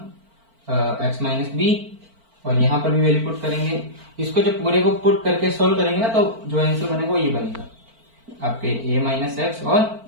x minus b, और यहाँ पर भी वैल्यू पुट करेंगे। इसको जब पूरे को पुट करके सोल्व करेंगे ना, तो जो आंसर बनेगा वो ये बनेगा आपके a माइनस एक्स और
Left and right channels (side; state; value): left; late; 4.4 ms